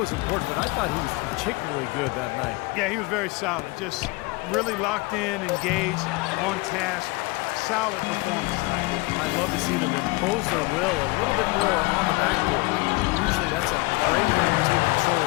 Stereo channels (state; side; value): quieter; right; 24.3 dB